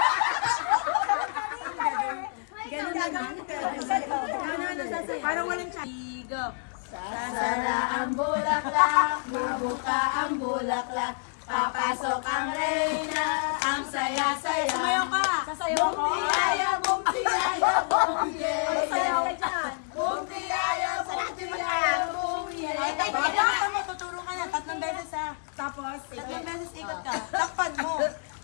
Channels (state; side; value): silent; right; 57 dB below the other